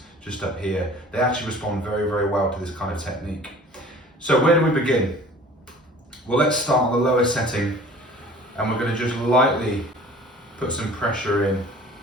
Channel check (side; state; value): both; normal; correlation 0.46